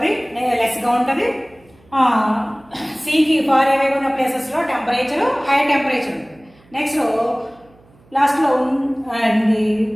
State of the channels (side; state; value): right; noise; hum, 30 dB below the sound